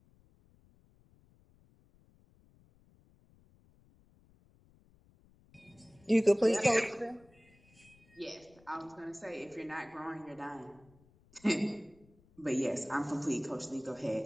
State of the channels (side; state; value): left; noise; rumble, 29 dB below the sound